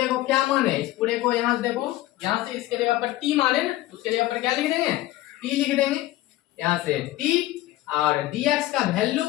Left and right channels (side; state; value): right; quieter; 16.4 dB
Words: को क्या माने, इस पूरे को यहाँ से देखो, यहाँ से इसके जगह पर t माने ना, उसके जगह पर क्या लिख देंगे, t लिख देंगे। यहाँ से t और dx का वैल्यू